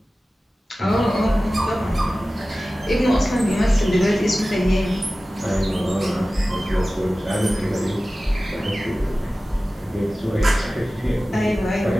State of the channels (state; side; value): normal; both; correlation 0.96